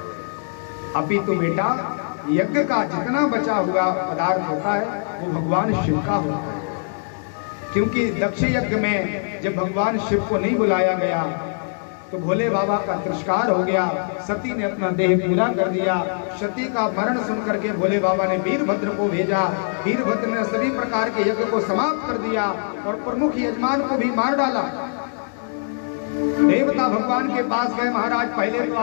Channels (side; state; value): right; silent; 63 dB below the other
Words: अभी तो बेटा यज्ञ का जितना बचा हुआ पदार्थ होता है वो भगवान शिव का होता है, क्योंकि दक्ष यज्ञ में जब भगवान शिव को नहीं बुलाया गया तो भोले बाबा का तिरस्कार हो गया। सती ने अपना देह पूरा कर दिया। सती का मरण सुनकर के भोले बाबा ने वीरभद्र को भेजा। वीरभद्र ने सभी प्रकार के यज्ञ को समाप्त कर दिया और प्रमुख यजमान को भी मार डाला। देवता भगवान के पास गए, महाराज पहले तो